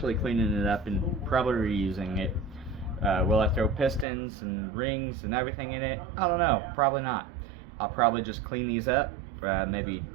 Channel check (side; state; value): left; drops out; at 4.0 s